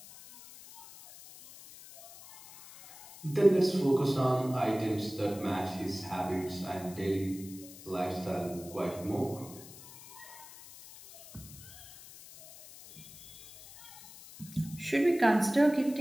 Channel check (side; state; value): left; noise; hiss, 18 dB below the sound